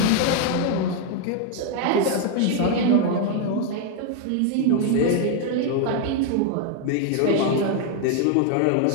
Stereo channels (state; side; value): different; both; correlation 0.00